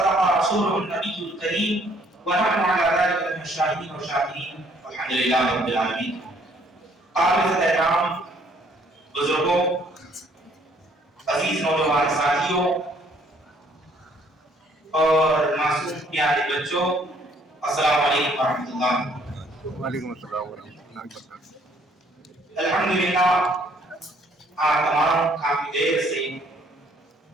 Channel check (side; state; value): both; normal; correlation 0.63